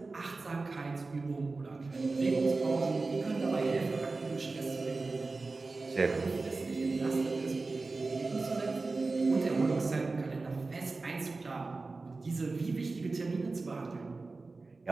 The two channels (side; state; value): left; quieter; 3.7 dB